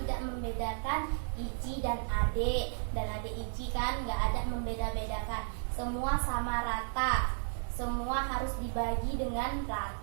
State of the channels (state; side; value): silent; left; 55 dB below the other